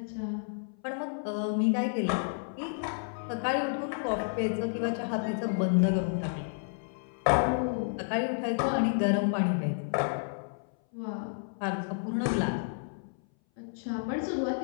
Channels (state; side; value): silent; right; 57 dB below the other